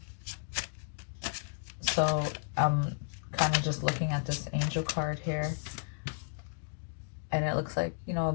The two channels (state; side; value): silent; right; digital silence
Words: So I'm kind of just looking at this angel card here, and it looks like, you know, a